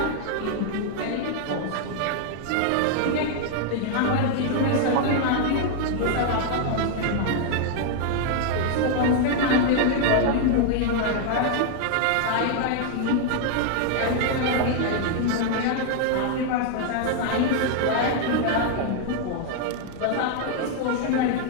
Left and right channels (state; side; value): different; both; correlation 0.00